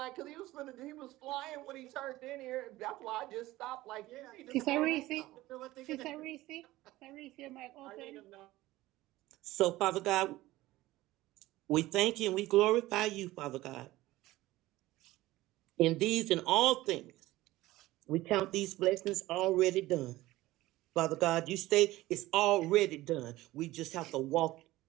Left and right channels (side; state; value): left; quieter; 17.4 dB